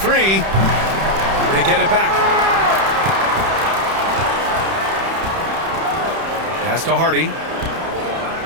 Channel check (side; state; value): left; late; 31 ms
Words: They get it back. Pass to Hardy.